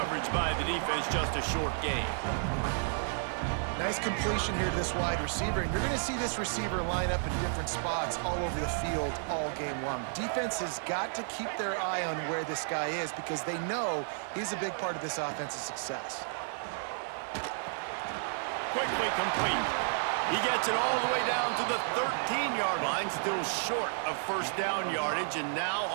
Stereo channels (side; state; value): left; silent; 56 dB below the other